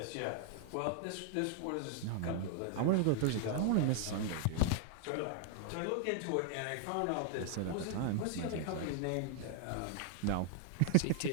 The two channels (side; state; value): both; different; correlation 0.00